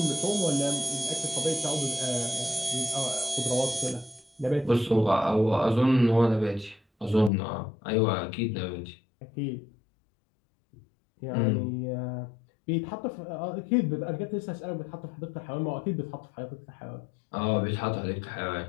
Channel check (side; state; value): right; drops out; at 7.3 s